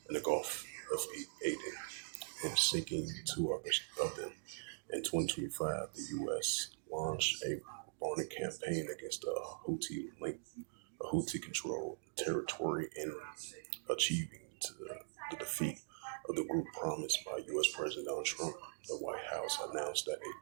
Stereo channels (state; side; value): silent; left; digital silence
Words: in the Gulf of Aden and sinking two others of them. In 2025, the U.S. launched a bombing campaign against a Houthi-controlled territory in achieving the defeat of the group promised by U.S. President Donald Trump. The White House announced that a